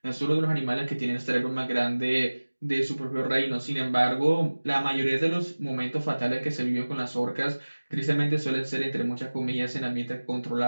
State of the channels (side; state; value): both; inverted; correlation -1.00